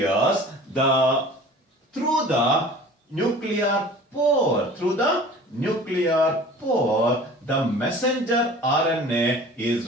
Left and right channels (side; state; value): both; normal; correlation 0.44